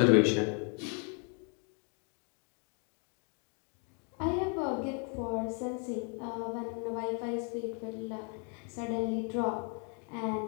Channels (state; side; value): quieter; right; 39.1 dB